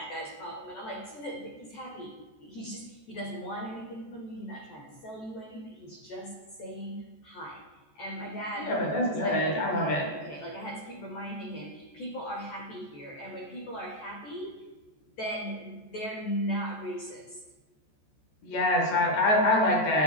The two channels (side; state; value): right; late; 14 ms